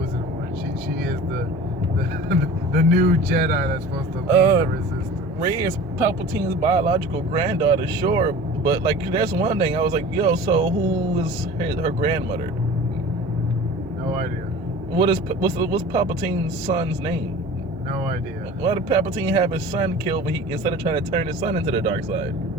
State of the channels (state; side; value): normal; both; correlation 0.40